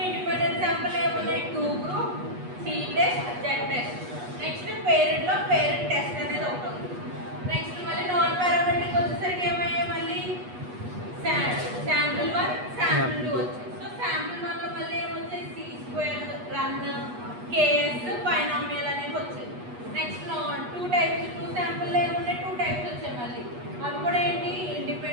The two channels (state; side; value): late; left; 8.2 ms